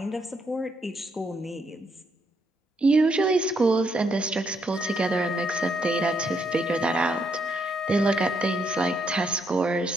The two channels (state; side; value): normal; both; correlation 0.75